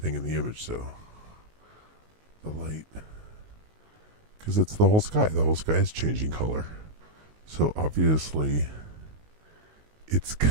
in the image, so the light, because it's the whole sky. The whole sky is changing color, so obviously it's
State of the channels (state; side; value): late; left; 19 ms